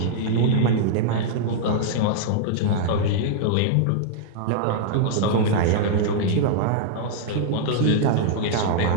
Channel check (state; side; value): different; both; correlation -0.01